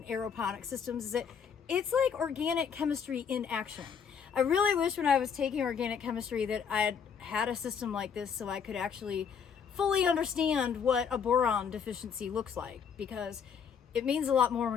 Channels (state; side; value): quieter; right; 6.9 dB